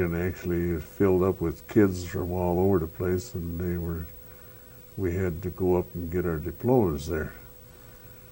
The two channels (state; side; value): identical; both; correlation 1.00